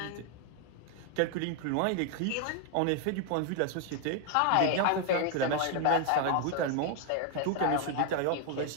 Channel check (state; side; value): different; both; correlation 0.00